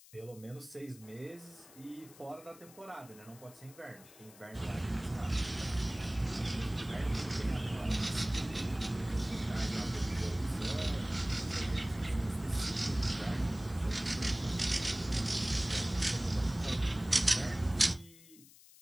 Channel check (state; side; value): noise; left; hiss, 22 dB below the sound